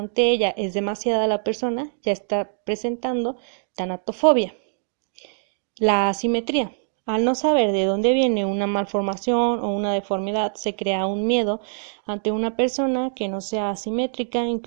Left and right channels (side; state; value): left; silent; digital silence